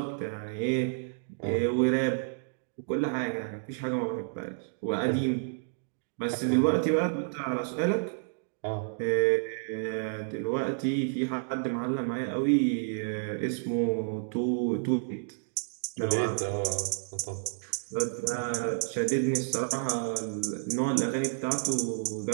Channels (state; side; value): silent; left; digital silence